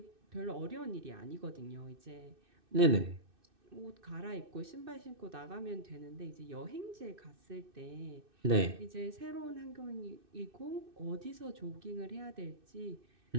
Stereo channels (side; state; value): left; late; 2.6 ms